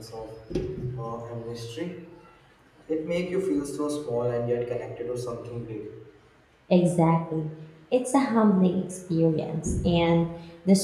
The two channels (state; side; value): identical; both; correlation 1.00